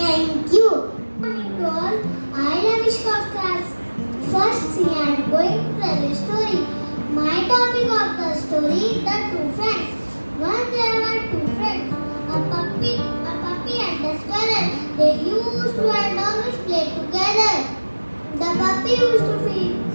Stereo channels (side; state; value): both; inverted; correlation -1.00